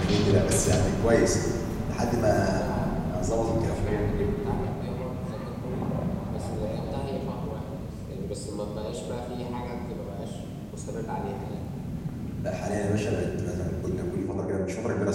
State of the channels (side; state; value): both; identical; correlation 1.00